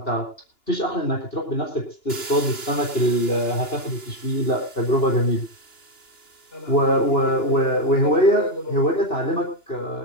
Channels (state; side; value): late; right; 2.9 ms